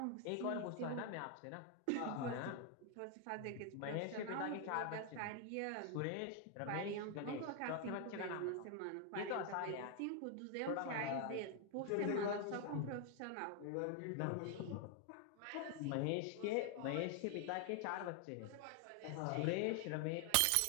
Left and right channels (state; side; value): different; both; correlation 0.00